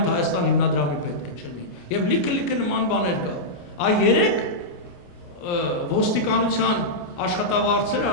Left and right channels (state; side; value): late; right; 29 ms